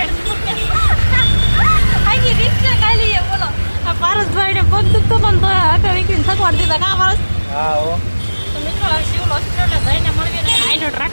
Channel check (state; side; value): inverted; both; correlation -1.00